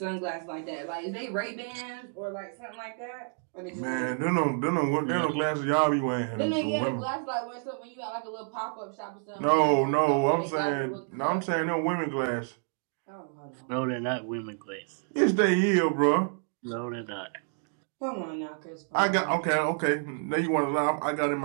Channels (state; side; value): silent; left; 58 dB below the other